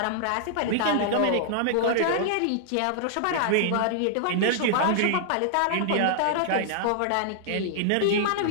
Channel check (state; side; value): different; both; correlation -0.01